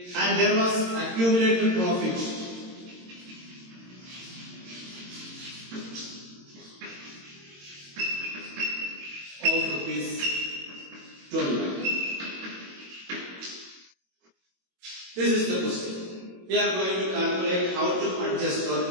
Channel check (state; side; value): late; left; 22 ms